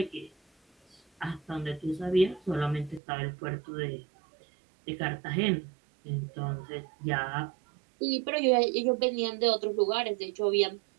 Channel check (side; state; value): left; drops out; at 3.0 s